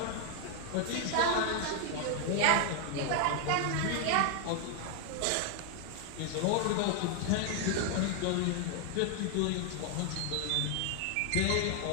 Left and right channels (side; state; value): both; different; correlation 0.00